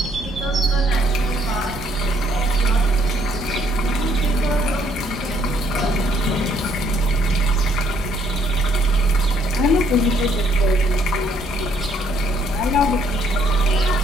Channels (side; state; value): both; normal; correlation 0.67